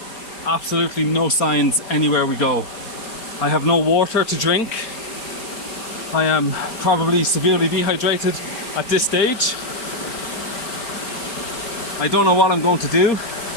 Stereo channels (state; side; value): late; right; 4.4 ms